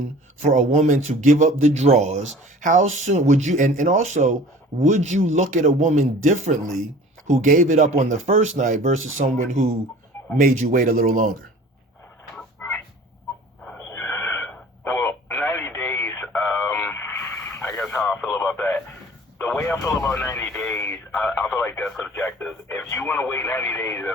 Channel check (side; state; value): both; normal; correlation 0.45